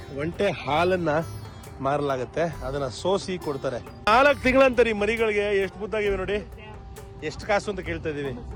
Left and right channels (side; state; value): both; identical; correlation 1.00